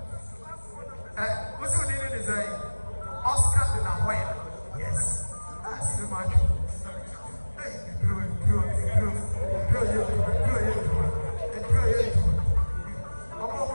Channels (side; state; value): both; inverted; correlation -1.00